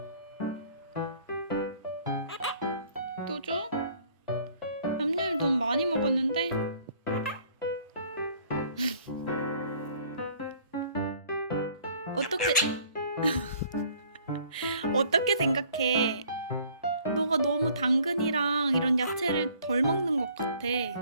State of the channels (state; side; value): inverted; both; correlation -0.57